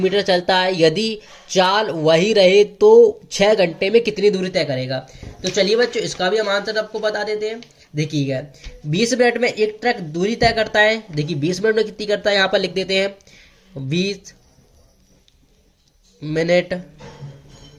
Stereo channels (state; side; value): identical; both; correlation 1.00